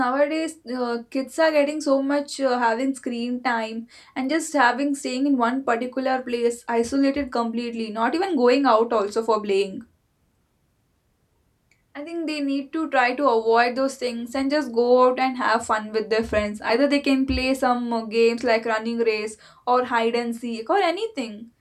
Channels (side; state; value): both; identical; correlation 1.00